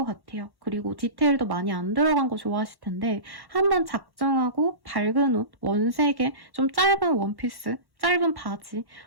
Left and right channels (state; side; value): late; left; 1.1 ms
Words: 같아요. 그리고 디테일도 많이 안 들어간 거 좋아하실 텐데 한번 작정하고 밝은 옷, 원색의 좀 짧은 원피스 짧은 바지